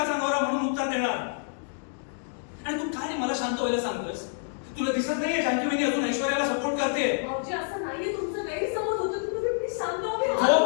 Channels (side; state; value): right; silent; digital silence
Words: नवरा म्हणून उत्तर देणार. आणि तू काय मला शांत व्हायला सांगतोस? तुला दिसत नाहीये जानकी वहिनी अजून ऐश्वर्याला सपोर्ट करते? भाऊजी असं नाहीये, तुमचं गैरसमज होतो. तुम्ही शांत व्हा.